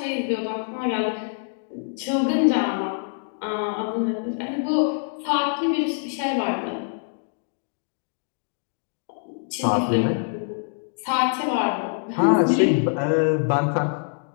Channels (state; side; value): silent; right; digital silence